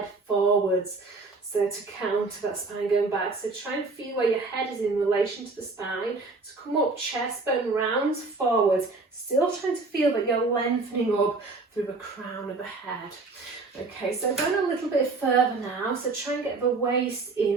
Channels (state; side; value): quieter; left; 3.7 dB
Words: forwards. So to counter that spine going back. So try and feel where your head is in relation to the spine. To come up, chest bone rounds forwards. Still trying to feel that you're lengthening up through the crown of the head. Okay, so going a little bit further now. So try and get the waist